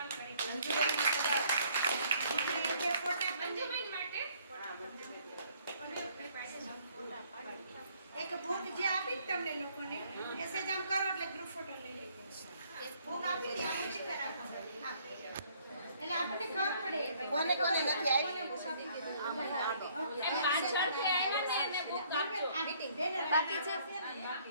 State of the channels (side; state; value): both; inverted; correlation -0.63